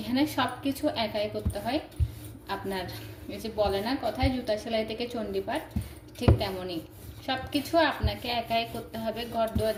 সব কিছু একাই করতে হয়। আপনার এই যে বলে না কথায়, জুতা সেলাই থেকে চণ্ডীপাঠ, ঠিক তেমনই সব কিছু আপনাকে একাই করতে হবে। ঘর দুয়ার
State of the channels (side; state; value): both; identical; correlation 1.00